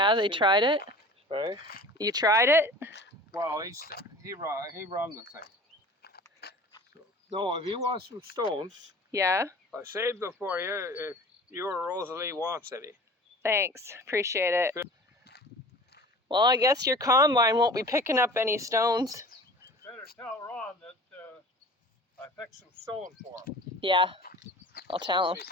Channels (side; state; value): both; normal; correlation 0.41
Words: they tried it. Hey? You tried it? Well, he run the thing. So, no, if you want some stones, Yeah. I saved them for you if your Rosalie wants any. Thanks. Appreciate it. Well, I guess your combine won't be picking up any stones. Better tell Ron that I picked some stones for him. Yeah. I'll tell him. He